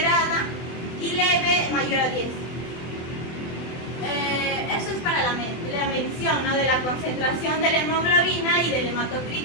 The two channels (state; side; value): late; right; 24 ms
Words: y leve mayor a 10. Eso es para la medición, ¿no?, de la concentración de la hemoglobina y del